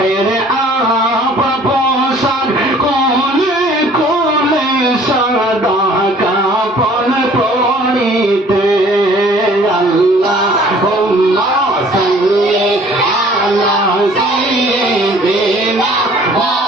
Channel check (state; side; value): normal; both; correlation 0.54